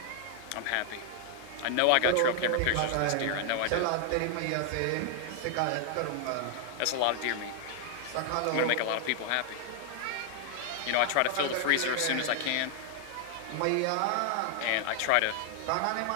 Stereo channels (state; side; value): different; both; correlation 0.00